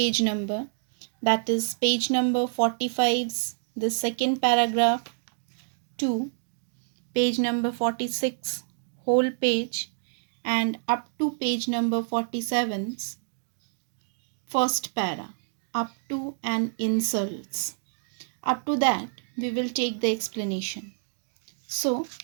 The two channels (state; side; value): silent; left; digital silence